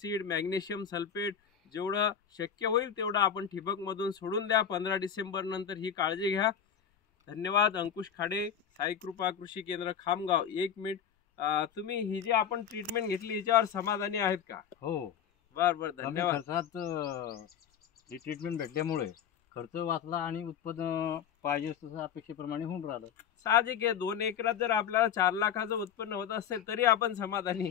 magnesium sulphate जेवढं शक्य होईल तेवढं आपण ठिबकमधून सोडून द्या। 15 डिसेंबर नंतर ही काळजी घ्या। धन्यवाद। अंकुश खाडे, साई कृपा कृषी केंद्र खामगाव। 1 मिनिट, तुम्ही ही जी आपण ट्रीटमेंट घेतली याच्यावर समाधानी आहेत का? हो, बरं, धन्यवाद। खर्चात ही ट्रीटमेंट भेटल्यामुळे खर्च वाचला आणि उत्पन्न पाहिजे तसं अपेक्षेप्रमाणे होऊन राहिलं। साहजिक आहे, 2 एकरात जर आपल्याला 4 लाखाचं उत्पन्न होत असेल तरी आपण समाधानी।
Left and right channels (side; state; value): right; quieter; 8.4 dB